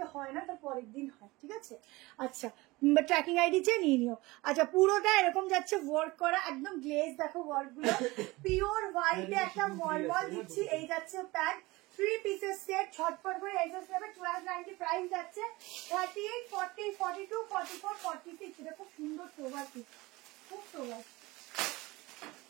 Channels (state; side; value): quieter; left; 21.6 dB